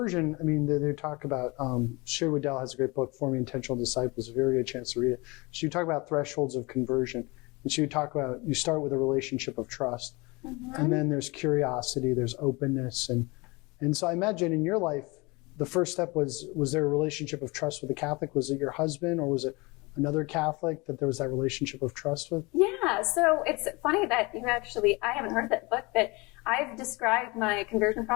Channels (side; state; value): right; quieter; 25.6 dB